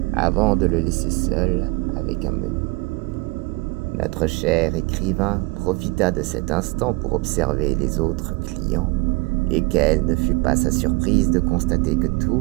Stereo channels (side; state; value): left; quieter; 25.3 dB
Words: avant de le laisser seul avec un menu. Notre cher écrivain profita de cet instant pour observer les autres clients, et quelle ne fut pas sa surprise de constater que